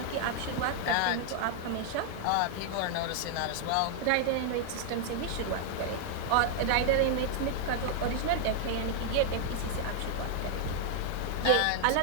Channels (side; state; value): both; different; correlation 0.00